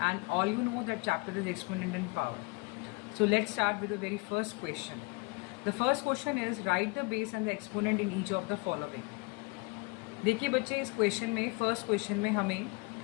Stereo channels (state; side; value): quieter; right; 28.4 dB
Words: all you know that chapter is Exponent in Power. So, let's start with the very first question. The first question is write the base and the exponent in each of the following. देखिए बच्चे, इस question में first question में हमें